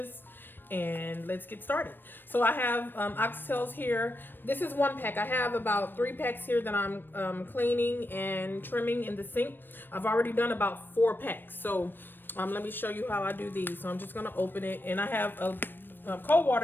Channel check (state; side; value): late; right; 0.095 ms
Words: and let's get started. So I have oxtails here. This is 1 pack. I have about 3 packs here that I'm cleaning and trimming in the sink. I've already done about 4 packs. So let me show you how I do these. So I'm just gonna open it, and I have a cold